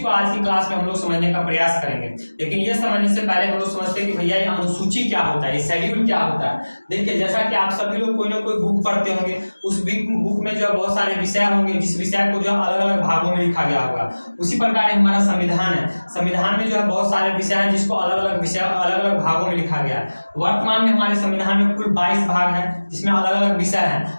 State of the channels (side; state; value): both; inverted; correlation -1.00